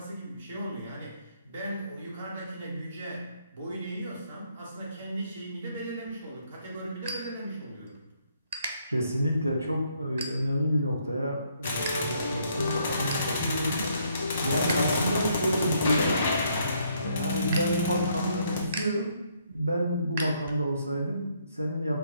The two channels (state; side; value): inverted; both; correlation -0.70